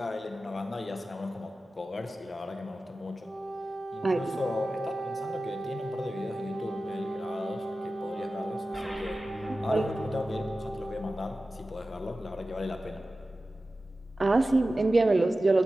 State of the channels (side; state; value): both; normal; correlation 0.95